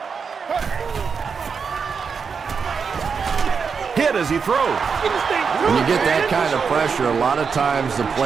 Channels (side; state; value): left; quieter; 5.8 dB